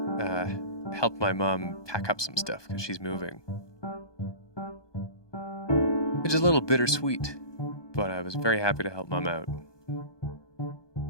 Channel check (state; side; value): late; right; 1.2 ms